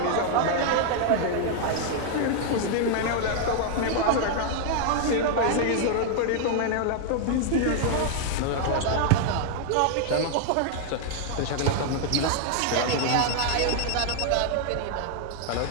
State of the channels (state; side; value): different; both; correlation 0.00